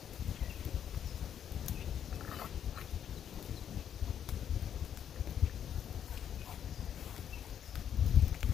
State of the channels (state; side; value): quieter; right; 9.2 dB